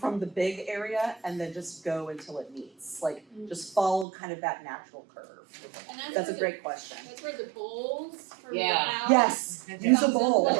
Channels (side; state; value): left; drops out; at 4.0 s